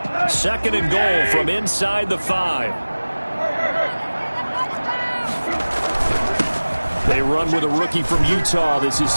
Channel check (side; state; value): both; inverted; correlation -1.00